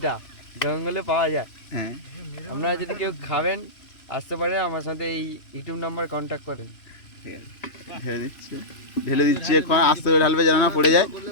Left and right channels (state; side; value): late; right; 3.0 ms